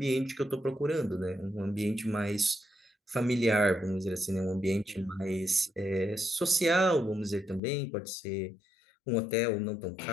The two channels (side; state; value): right; drops out; at 7.6 s